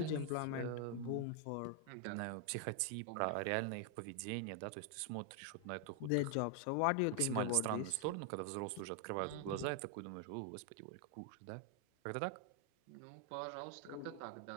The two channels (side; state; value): both; different; correlation 0.00